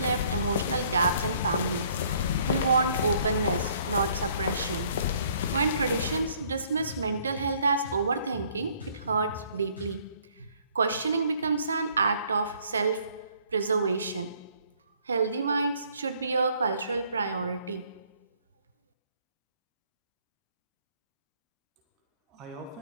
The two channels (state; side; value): inverted; both; correlation -0.62